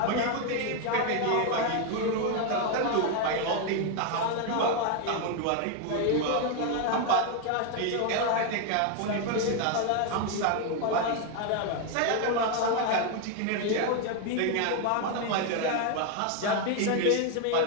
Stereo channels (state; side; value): different; both; correlation 0.01